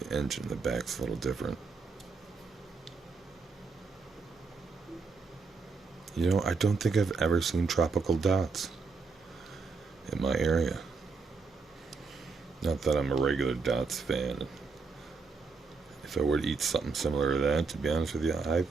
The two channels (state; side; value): quieter; left; 4.6 dB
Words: engine in the back's a little different. You know, I don't think I've ever seen tropical dots in my area. Not that I'm a regular dots fan. If I were to eat something similar to that, to be honest with you, I